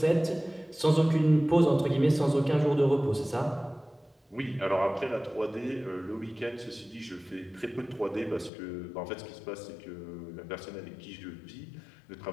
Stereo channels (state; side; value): drops out; right; at 8.5 s